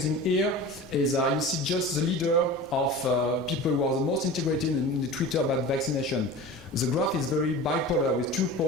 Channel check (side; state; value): both; normal; correlation 0.34